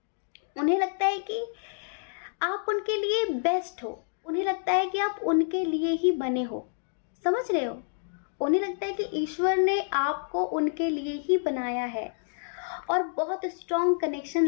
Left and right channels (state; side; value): silent; right; digital silence